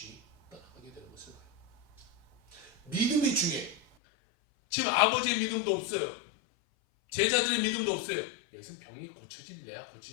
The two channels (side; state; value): right; drops out; at 3.8 s